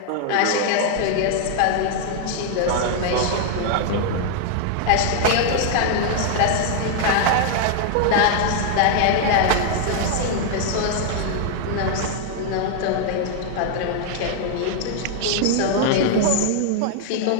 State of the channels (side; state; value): both; different; correlation 0.00